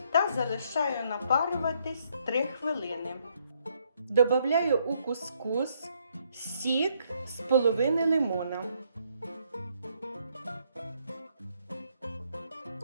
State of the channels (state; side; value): inverted; both; correlation -0.71